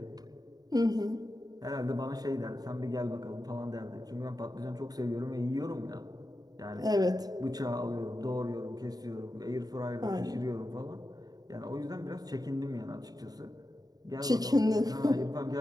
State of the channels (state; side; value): late; left; 0.19 ms